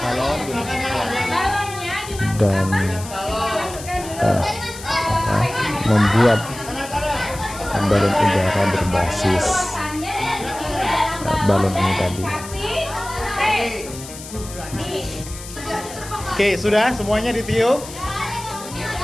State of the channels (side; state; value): left; noise; hiss, 14 dB below the sound